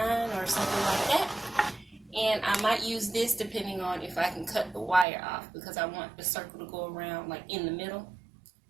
or something like that. And I might use this depending on if I can cut the wire off, because I want the circle to go around like in the middle.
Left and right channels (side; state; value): left; drops out; at 5.1 s